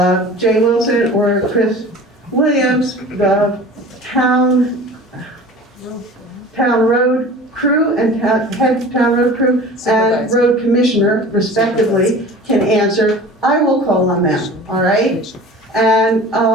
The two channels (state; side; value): normal; both; correlation 0.40